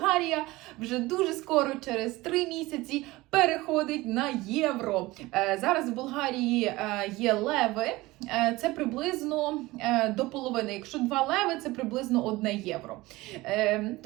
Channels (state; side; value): quieter; left; 19.9 dB